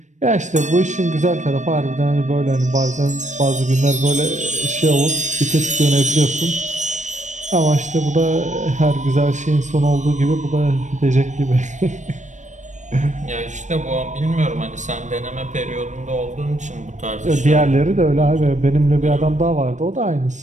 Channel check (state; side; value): late; left; 0.35 ms